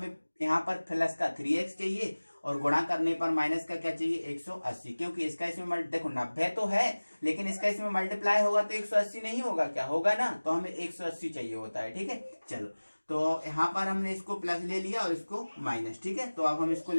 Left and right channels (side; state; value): both; inverted; correlation -1.00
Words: यहाँ पर प्लस का 3x चाहिए और गुणा करने पर माइनस का क्या चाहिए 180, क्योंकि इसका इसमें देखो 90 तो है लेकिन इसका इसमें मल्टीप्लाई होगा तो 180 नहीं होगा, क्या होगा ना, तो हमें 180 चाहिए होता है, ठीक है। चलो तो यहाँ पर हमने इसको प्लस ले लिया और इसको माइनस, ठीक है। तो अब हम इसको